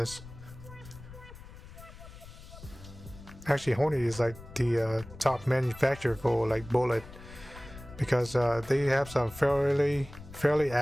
Actually, Hornady is like the top manufacturer for like bullet, because they have some fairly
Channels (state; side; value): noise; left; rumble, 16 dB below the sound